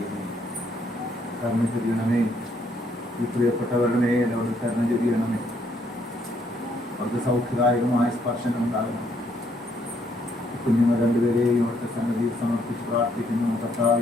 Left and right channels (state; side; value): normal; both; correlation 0.70